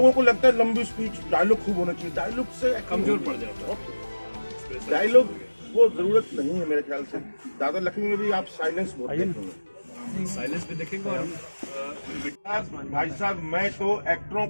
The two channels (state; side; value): inverted; both; correlation -1.00